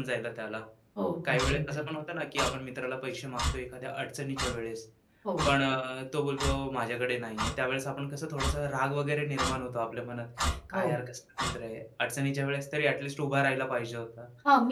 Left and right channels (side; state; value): both; identical; correlation 1.00